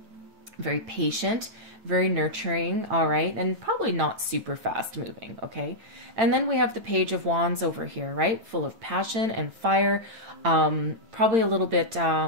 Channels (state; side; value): late; left; 8.8 ms